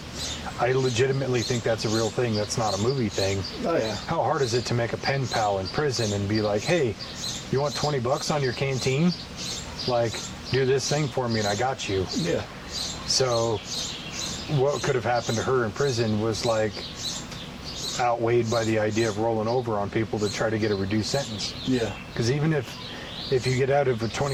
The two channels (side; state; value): both; identical; correlation 1.00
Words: I legitimately think that's a real thing. That's not a movie thing. Oh, yeah. How hard is it to make a pen pal in prison and be like, hey, you want $20 on your canteen? Like, do this thing for me and I got you. Yeah. So what could have happened to her in prison was like outweighed by the idea of rolling over on people to try to get a reduced sentence. Yeah. Because even if you get out of a